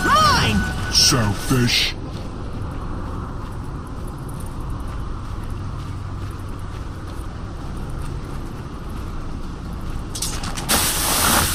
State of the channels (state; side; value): identical; both; correlation 1.00